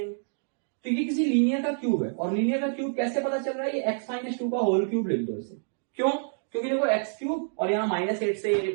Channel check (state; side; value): silent; left; digital silence